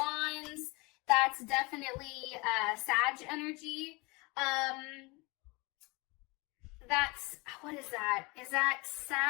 that's definitely Sag energy. That's, what is that? Is that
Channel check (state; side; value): quieter; right; 26.5 dB